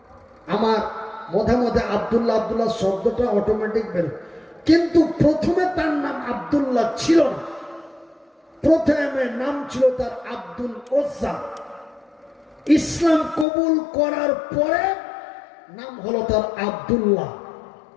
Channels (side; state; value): right; drops out; at 13.5 s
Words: আমার মধ্যে মধ্যে আব্দুল্লাহ আব্দুল্লাহ শব্দটা অটোমেটিক বের, কিন্তু প্রথমে তার নাম আব্দুল্লাহ ছিল না। প্রথমে নাম ছিল তার আব্দুল ওজ্জা। ইসলাম কবুল করার পরে নাম হলো তার আব্দুল্লাহ।